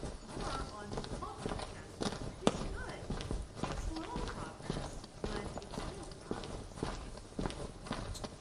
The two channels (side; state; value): both; identical; correlation 1.00